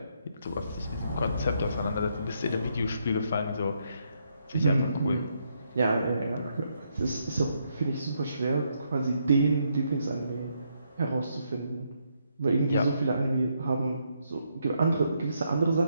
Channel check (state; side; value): inverted; both; correlation -0.77